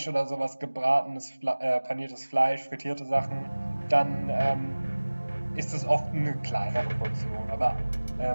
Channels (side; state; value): both; inverted; correlation -1.00